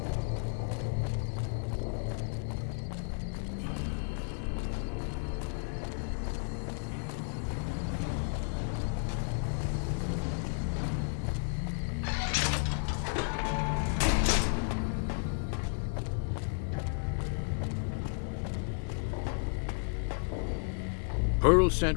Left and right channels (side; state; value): right; silent; 56 dB below the other